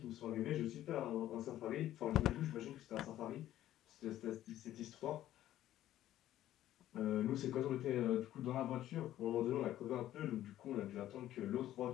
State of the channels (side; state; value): right; quieter; 13.1 dB